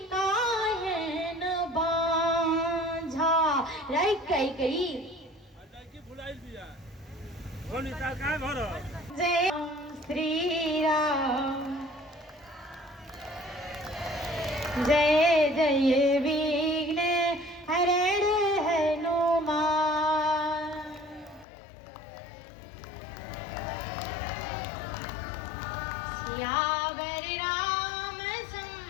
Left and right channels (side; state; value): right; drops out; at 21.5 s